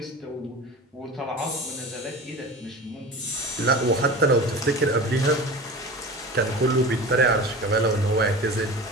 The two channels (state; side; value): normal; both; correlation 0.34